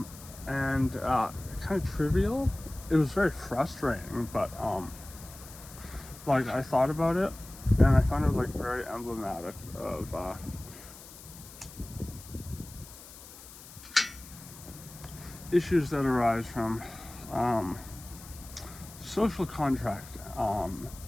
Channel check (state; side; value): noise; left; hiss, 17 dB below the sound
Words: kind of trivial. It was very frustrating, but like I thought about it and I found it like very emblematic of issues that arise from social contract,